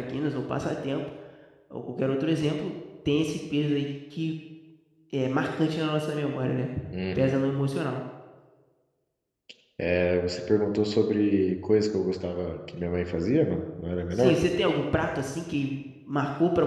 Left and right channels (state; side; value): identical; both; correlation 1.00